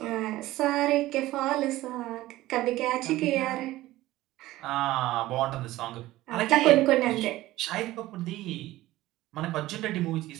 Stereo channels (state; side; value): quieter; left; 16.7 dB